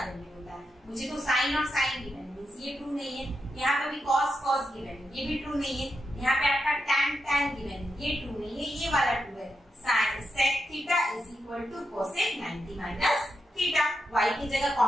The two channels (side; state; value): both; normal; correlation 0.86